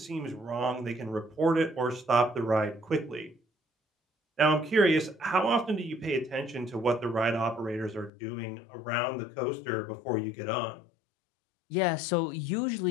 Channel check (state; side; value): drops out; right; at 8.1 s